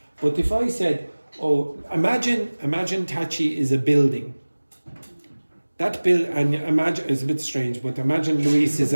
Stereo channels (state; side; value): inverted; both; correlation -1.00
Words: But if I said, imagine Tachi is a building. That and imagine, it's a bit strange, but imagine Luis is